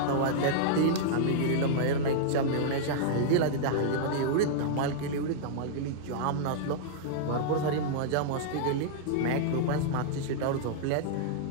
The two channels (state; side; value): different; both; correlation -0.02